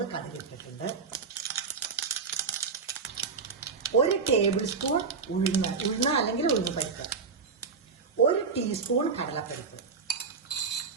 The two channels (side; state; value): left; quieter; 5.1 dB